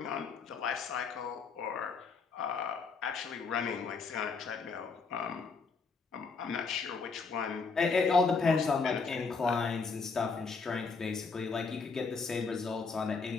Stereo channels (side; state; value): right; quieter; 4.7 dB